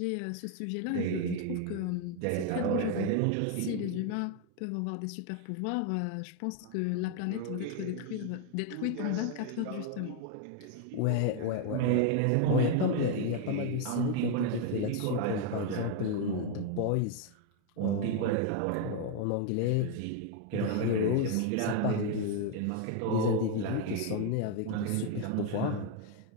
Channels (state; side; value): different; both; correlation 0.01